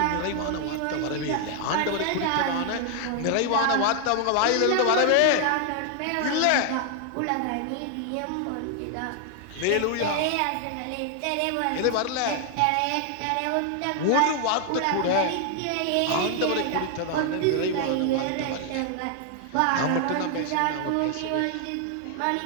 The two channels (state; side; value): different; both; correlation 0.00